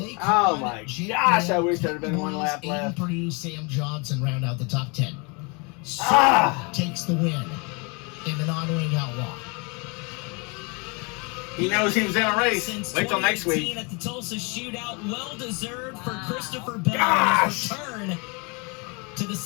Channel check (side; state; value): right; quieter; 31.4 dB